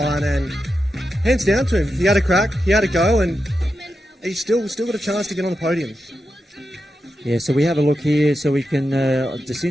and hands down to him. He had a crack, he had a go, and he's still got a chance to get on the podium. Yeah, so we have a look here. So we can,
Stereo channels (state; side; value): normal; both; correlation 0.88